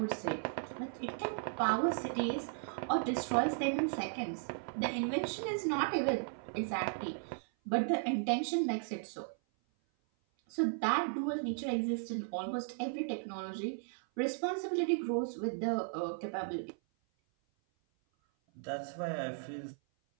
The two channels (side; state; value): left; silent; 54 dB below the other